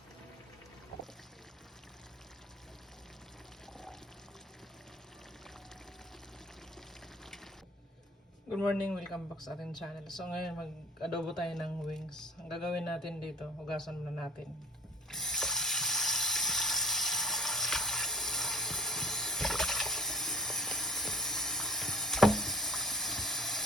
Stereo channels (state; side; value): normal; both; correlation 0.49